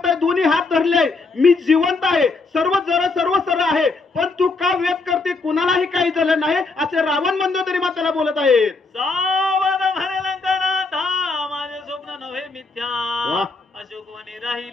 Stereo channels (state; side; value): quieter; right; 3.8 dB